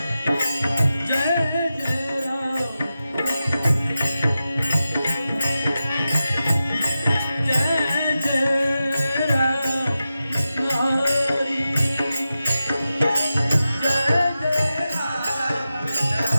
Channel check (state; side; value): inverted; both; correlation -0.92